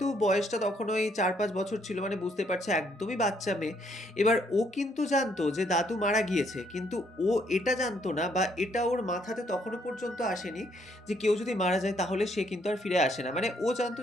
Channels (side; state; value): both; normal; correlation 0.69